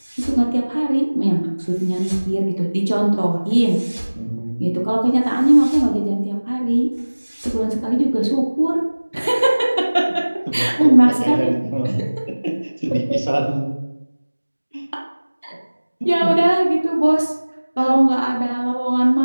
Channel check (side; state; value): both; inverted; correlation -1.00